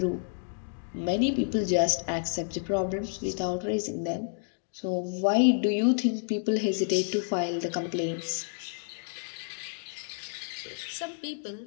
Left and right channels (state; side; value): silent; right; digital silence